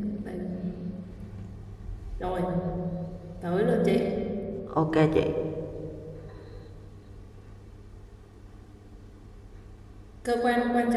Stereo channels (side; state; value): both; identical; correlation 1.00